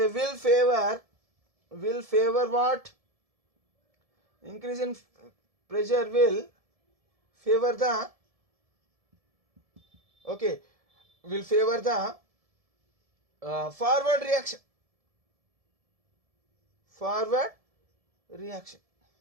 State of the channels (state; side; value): late; left; 1.7 ms